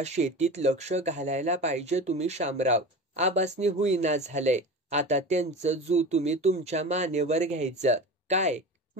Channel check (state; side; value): normal; both; correlation 0.31